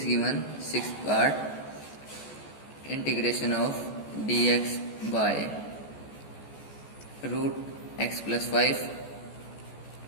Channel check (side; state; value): right; late; 14 ms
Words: given sixth part, integration of dx by root x plus 5